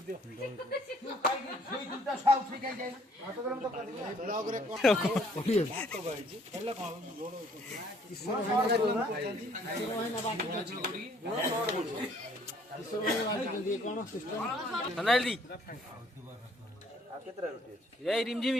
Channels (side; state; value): both; normal; correlation 0.61